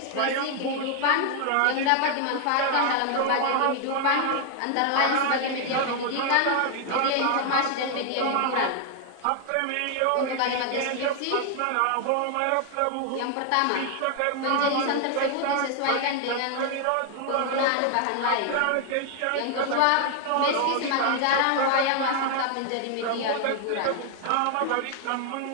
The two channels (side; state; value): both; different; correlation 0.00